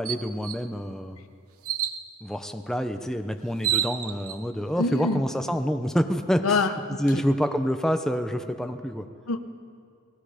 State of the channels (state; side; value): normal; both; correlation 0.68